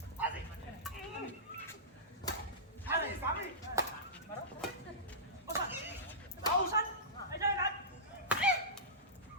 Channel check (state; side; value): normal; both; correlation -0.18